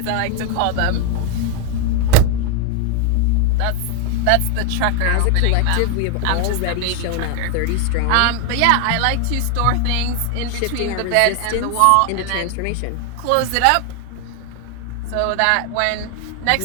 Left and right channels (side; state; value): both; different; correlation 0.01